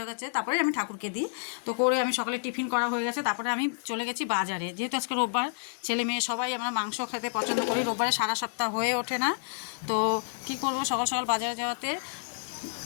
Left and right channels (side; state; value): right; silent; digital silence